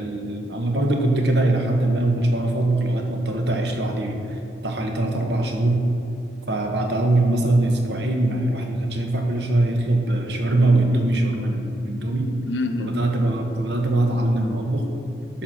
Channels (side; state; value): both; normal; correlation 0.80